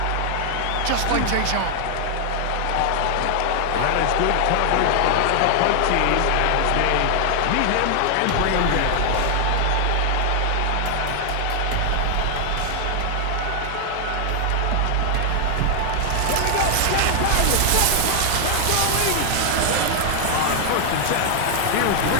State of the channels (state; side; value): different; both; correlation 0.00